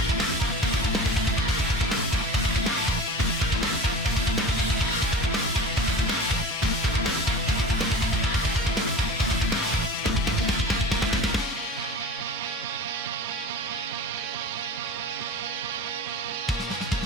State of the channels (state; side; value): normal; both; correlation 0.34